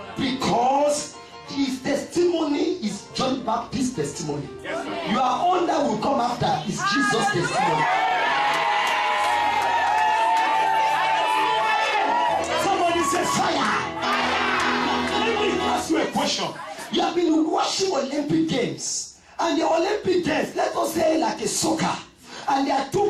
Because his testimony is John Baptist's testimony. Your own that will come after is Jesus' testimony. Somebody say fire. Let me ask you a question. You have been watching Olympic Games, and the Olympic Games, let us say like a soccer, and there are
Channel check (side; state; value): both; identical; correlation 1.00